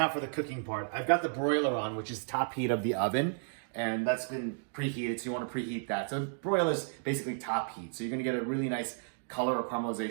for the cooking part. I've got the broiler on, which is top heat of the oven, and that's been preheated, so you want to preheat that. So broiler is basically top heat, so you're going to get a really nice color or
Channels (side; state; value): left; silent; digital silence